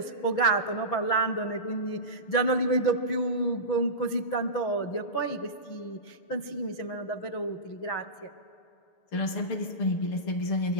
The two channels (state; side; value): late; right; 6.7 ms